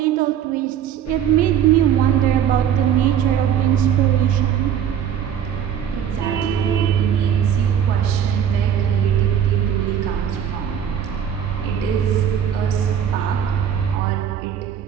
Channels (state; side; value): quieter; left; 9.0 dB